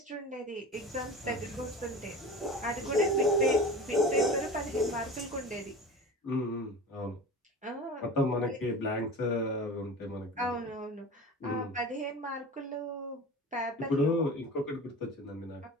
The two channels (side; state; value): both; normal; correlation 0.34